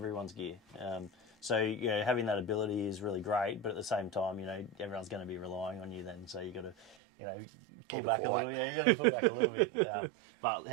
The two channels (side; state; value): left; drops out; at 7.0 s